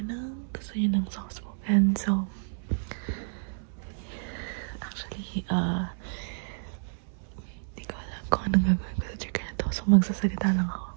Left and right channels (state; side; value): silent; left; 58 dB below the other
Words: ng gusto niyo ng soft spoken. So, actually, di ko alam kung anong gagawin ko sa trigger na to. So, magsasalita lang ako.